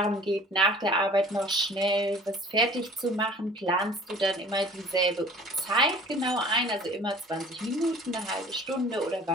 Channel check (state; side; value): normal; both; correlation 0.48